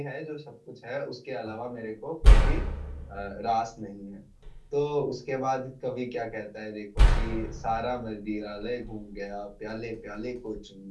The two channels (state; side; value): identical; both; correlation 1.00